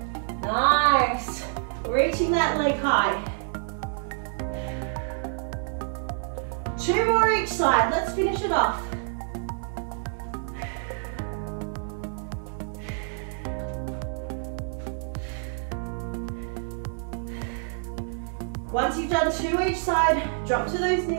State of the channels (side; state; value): left; silent; 60 dB below the other